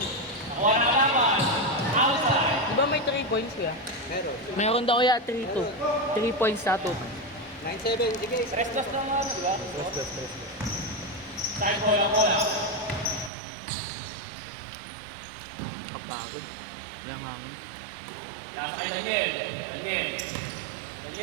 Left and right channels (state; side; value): drops out; left; at 13.3 s